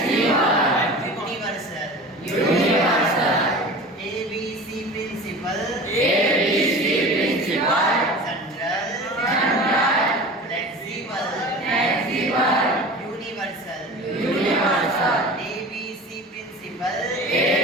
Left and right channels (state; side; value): normal; both; correlation 0.36